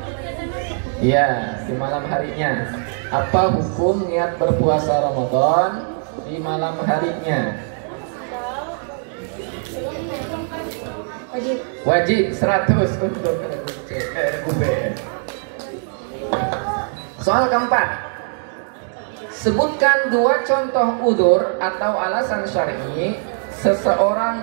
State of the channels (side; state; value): left; silent; 65 dB below the other